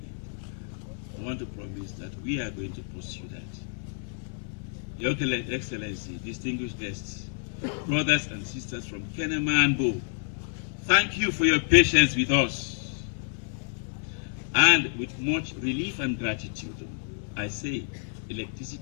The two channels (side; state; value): right; silent; digital silence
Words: I want to promise that we are going to pursue that. Your Excellency, distinguished guests, brothers and sisters from Kenema and Bo, thank you for your patience with us. And with much relief and gratitude, I say